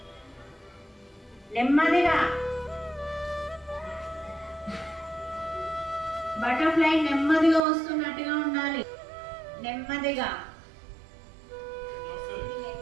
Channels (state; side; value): drops out; left; at 7.6 s